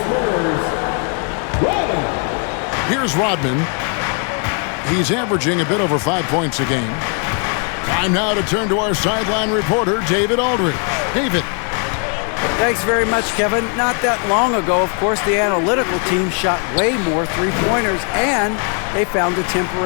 Rodman. Here's Rodman. He's averaging a bit over 5 points a game. Time now to turn to our sideline reporter, David Aldridge. David. Thanks very much, Kevin. Not that long ago, of course, the analytical team shot way more three-pointers, and they found a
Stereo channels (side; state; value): right; quieter; 39.2 dB